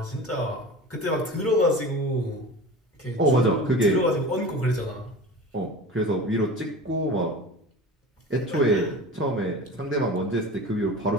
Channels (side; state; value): both; normal; correlation 0.34